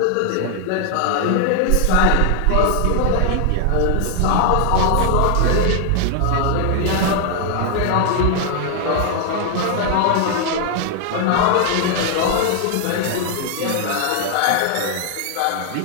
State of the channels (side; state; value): both; different; correlation 0.00